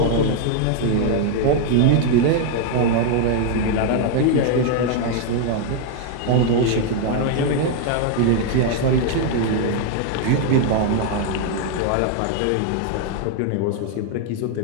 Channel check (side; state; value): both; different; correlation 0.00